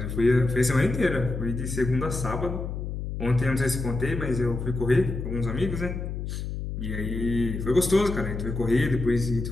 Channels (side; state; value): left; noise; hum, 5 dB below the sound